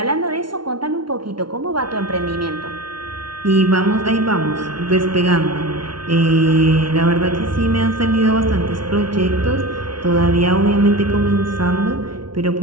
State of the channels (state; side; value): late; left; 0.73 ms